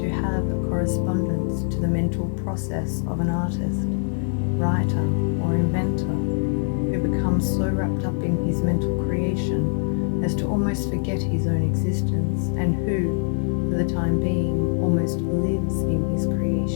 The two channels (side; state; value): right; silent; 63 dB below the other